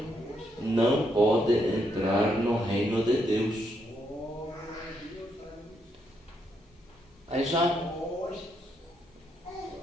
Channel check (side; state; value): both; normal; correlation 0.77